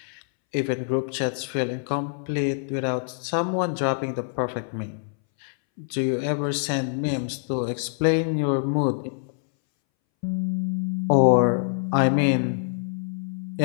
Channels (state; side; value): silent; right; 62 dB below the other